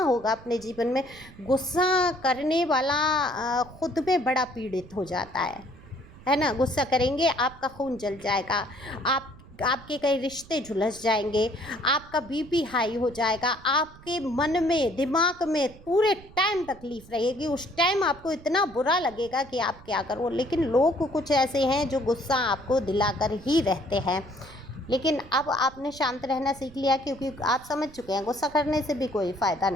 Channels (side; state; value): right; noise; rumble, 20 dB below the sound